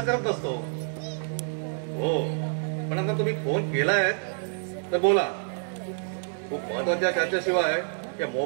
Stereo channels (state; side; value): silent; left; digital silence